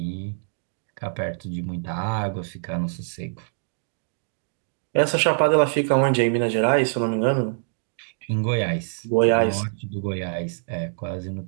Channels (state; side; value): silent; left; digital silence